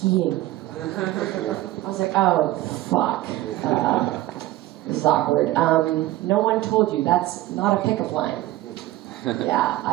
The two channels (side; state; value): left; quieter; 16.3 dB